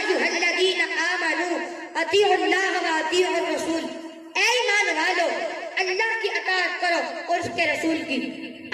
الذین آمنوا اطیعوا اللہ و اطیعوا الرسول، اے ایمان والو اللہ کی اطاعت کرو اور اس کے رسول کی۔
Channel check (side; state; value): both; identical; correlation 1.00